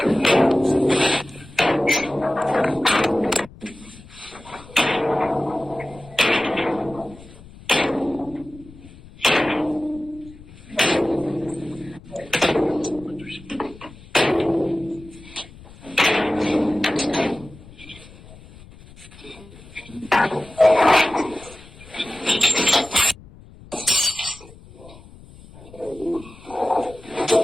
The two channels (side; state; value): left; noise; rumble, 20 dB below the sound